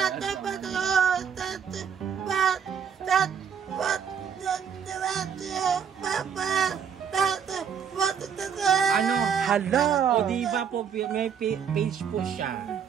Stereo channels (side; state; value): left; quieter; 7.5 dB